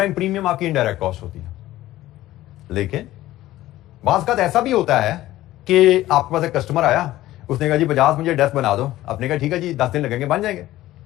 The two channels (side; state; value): right; quieter; 15.4 dB